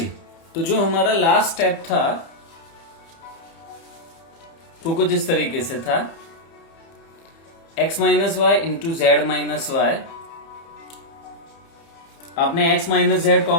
तो जो हमारा लास्ट स्टेप था वो कुछ इस तरीके से था, x minus y into z minus y आपने x माइनस जेड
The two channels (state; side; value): late; right; 30 ms